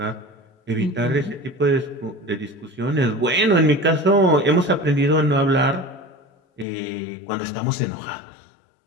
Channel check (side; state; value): right; drops out; at 6.7 s